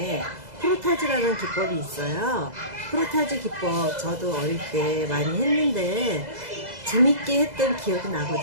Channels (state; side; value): late; left; 2.0 ms